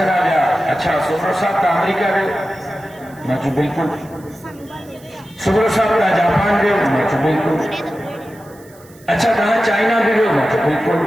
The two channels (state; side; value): noise; right; hiss, 26 dB below the sound